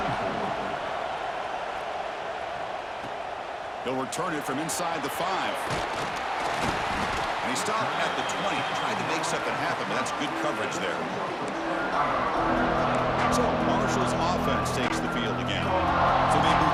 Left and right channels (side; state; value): both; identical; correlation 1.00